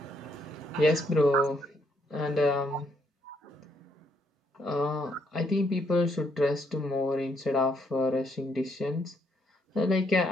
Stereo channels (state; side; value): normal; both; correlation 0.73